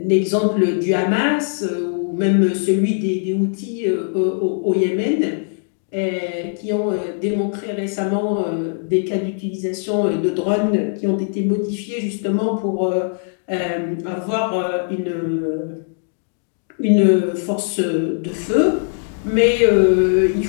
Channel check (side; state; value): right; silent; digital silence